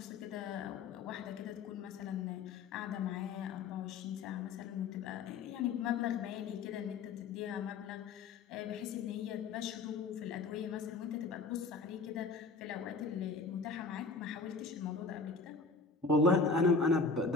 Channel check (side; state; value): right; quieter; 4.3 dB